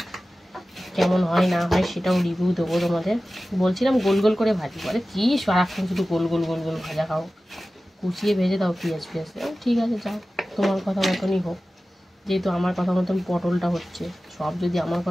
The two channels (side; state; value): both; normal; correlation 0.96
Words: কেমন হয় না হয় সেটাও রিভিউ দেবো তোমাদের। বলছিলাম গোল গোল করে ভাজি, বলে কি সারাক্ষণ শুধু গোল গোল গোল গোল ভাজা খাও, কুচিয়ে ভেজে দাও পেঁয়াজ ফিয়াজ। ঠিক আছে যাও, তোমার কথা মতনই হোক, যেহেতু আমার কথা মতন পটলটা হচ্ছে। সব যদি আমার